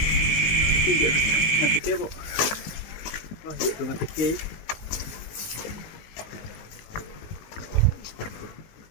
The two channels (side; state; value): right; late; 19 ms